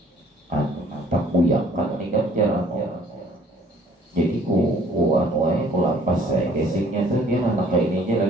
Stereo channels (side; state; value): both; normal; correlation 0.57